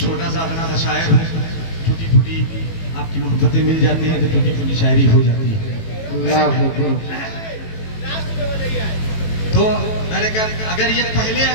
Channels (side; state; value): right; late; 18 ms